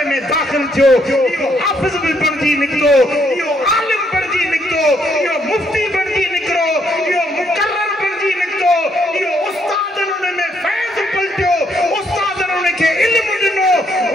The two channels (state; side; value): normal; both; correlation 0.72